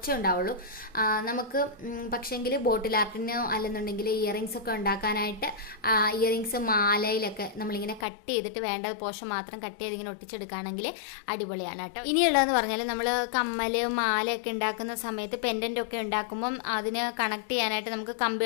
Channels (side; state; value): right; drops out; at 8.1 s